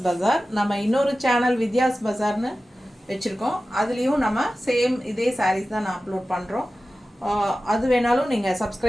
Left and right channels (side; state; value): both; normal; correlation 0.95